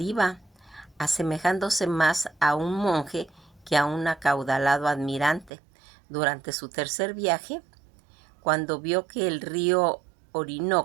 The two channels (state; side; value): drops out; left; at 5.5 s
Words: iba, asemejándose más a un monje que a un acaudalado admirante. Durante su tercer viaje, cuando vio que el río